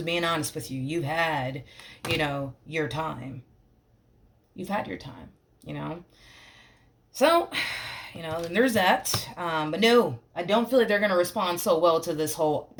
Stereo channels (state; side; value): identical; both; correlation 1.00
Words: being honest with you. You've had, your time. You've had your time. So, and there's that. But no, I don't feel like they're going to respond so well to this whole,